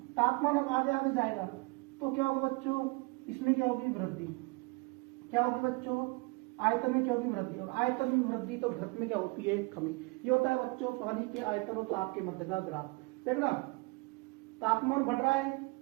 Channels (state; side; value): quieter; left; 26.5 dB